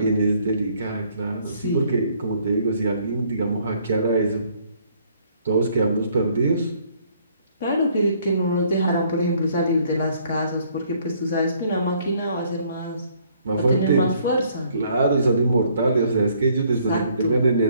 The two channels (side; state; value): both; inverted; correlation -0.64